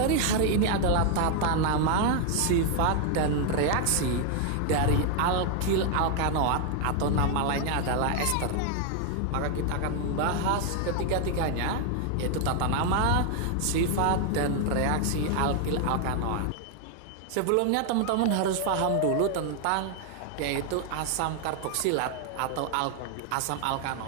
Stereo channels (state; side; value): different; both; correlation 0.00